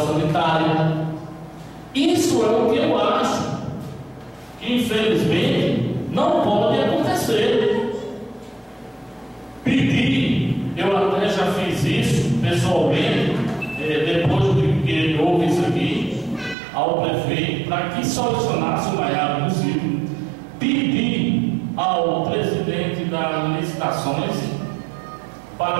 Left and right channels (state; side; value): drops out; left; at 16.6 s